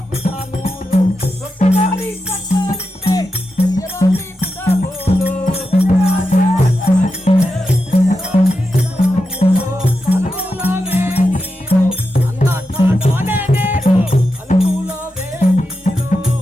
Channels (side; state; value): both; normal; correlation 0.88